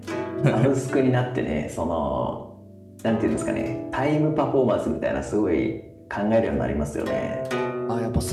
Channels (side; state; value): both; identical; correlation 1.00